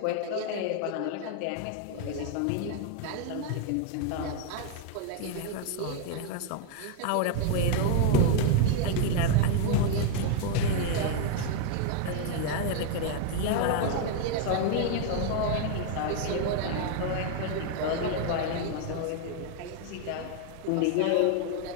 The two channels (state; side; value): different; both; correlation 0.00